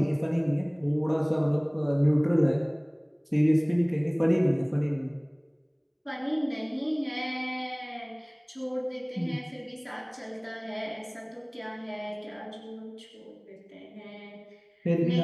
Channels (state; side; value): identical; both; correlation 1.00